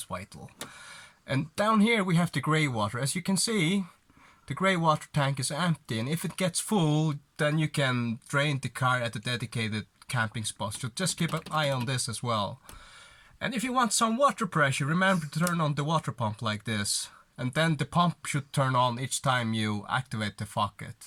vital. And down here we have the grey water. As you can see, the grey water tank is empty, and if it gets full, then you can drain the car at the dedicated camping spot. So just keep an eye on this as well. And if you want some water pressure, remember to turn on the water pump like this. And then the pump should turn on each time you activate the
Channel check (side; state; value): both; identical; correlation 1.00